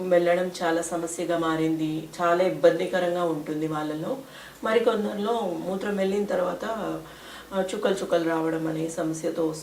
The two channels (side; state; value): both; identical; correlation 1.00